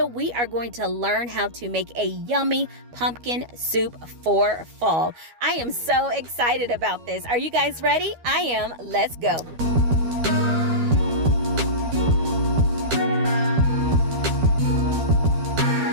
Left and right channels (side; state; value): left; late; 12 ms